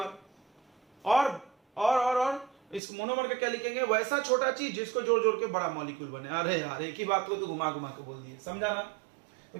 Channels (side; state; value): left; drops out; at 2.8 s